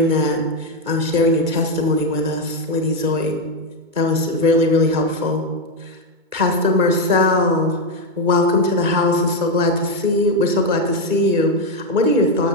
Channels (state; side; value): late; left; 2.2 ms